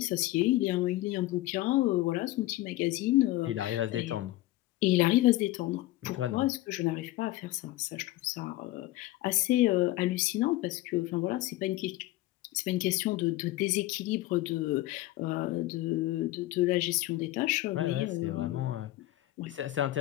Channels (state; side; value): quieter; right; 17.0 dB